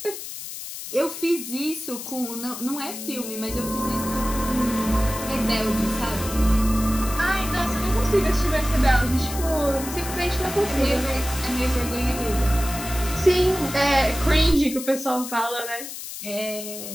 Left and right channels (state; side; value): noise; left; hiss, 9 dB below the sound